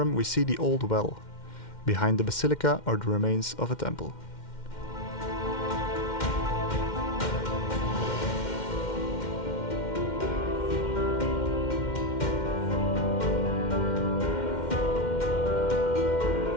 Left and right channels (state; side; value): late; right; 2.1 ms